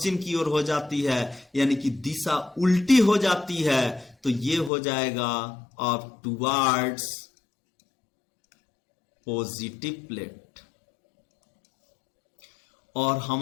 की ओर हो जाती है, यानी कि दिशा उल्टी हो जाती है। तो ये हो जाएगा अब टुवार्ड्स पॉजिटिव प्लेट। और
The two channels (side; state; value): right; drops out; at 4.7 s